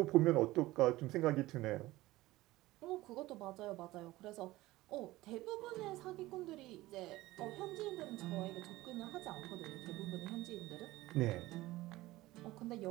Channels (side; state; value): left; quieter; 18.1 dB